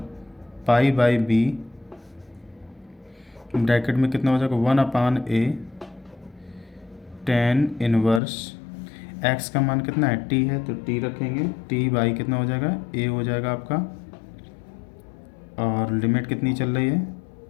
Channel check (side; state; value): right; drops out; at 8.2 s